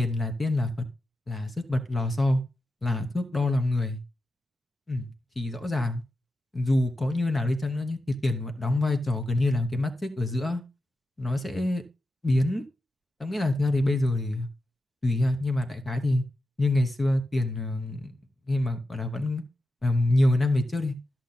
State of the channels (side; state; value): both; normal; correlation 0.89